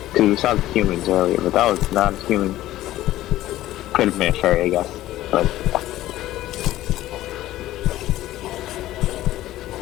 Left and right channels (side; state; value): right; quieter; 14.8 dB